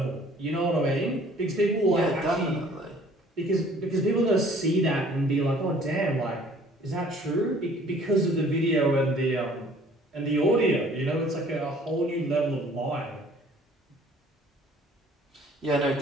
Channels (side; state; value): both; normal; correlation 0.55